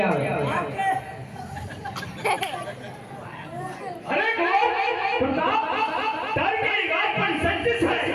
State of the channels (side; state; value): both; identical; correlation 1.00